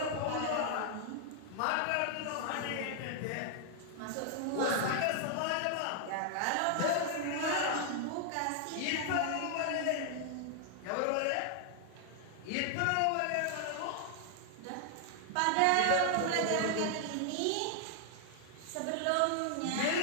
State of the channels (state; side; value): different; both; correlation 0.00